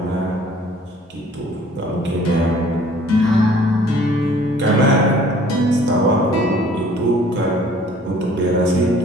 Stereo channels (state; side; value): normal; both; correlation 0.54